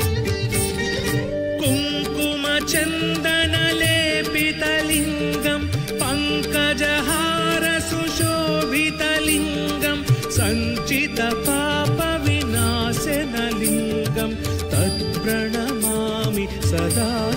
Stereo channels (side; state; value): both; identical; correlation 1.00